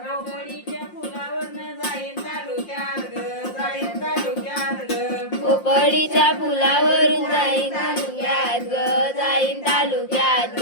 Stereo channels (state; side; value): late; right; 5.7 ms